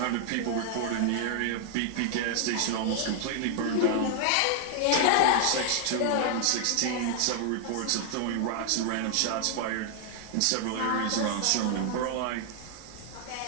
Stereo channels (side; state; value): both; different; correlation 0.00